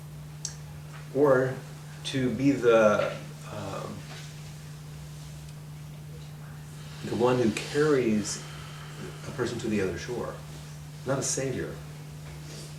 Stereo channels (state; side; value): identical; both; correlation 1.00